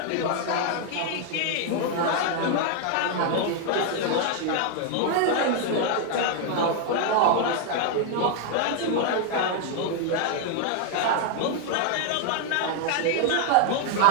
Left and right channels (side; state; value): both; different; correlation 0.00